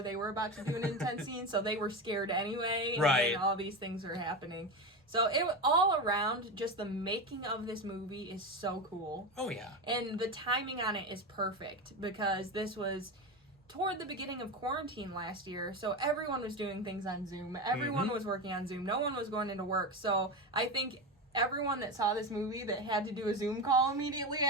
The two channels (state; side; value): normal; both; correlation 0.20